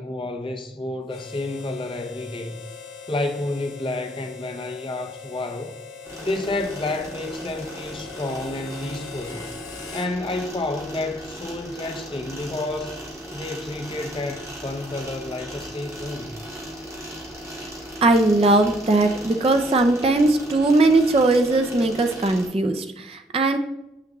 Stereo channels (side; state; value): both; normal; correlation 0.64